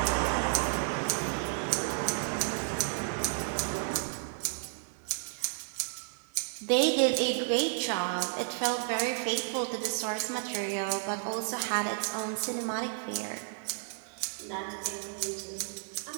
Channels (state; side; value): silent; left; 56 dB below the other